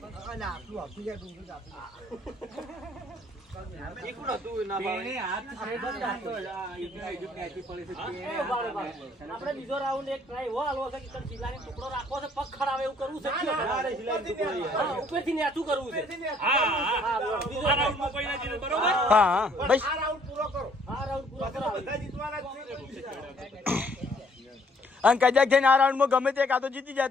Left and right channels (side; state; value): both; normal; correlation 0.62